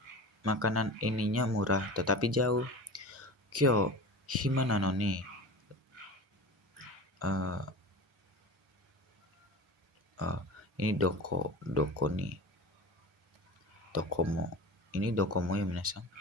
ininya murah tetapi jauh. Kyo hima nano ni ini doko ni dokomo. Ini dokomo ya minasang.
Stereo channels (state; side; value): normal; both; correlation 0.33